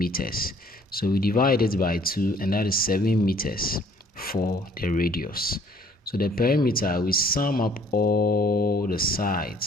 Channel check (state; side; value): normal; both; correlation 0.58